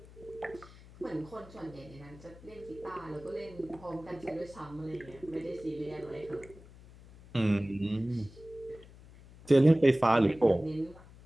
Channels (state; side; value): noise; left; hum, 21 dB below the sound